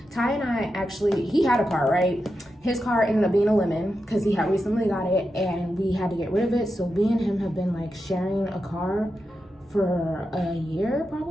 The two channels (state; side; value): normal; both; correlation 0.89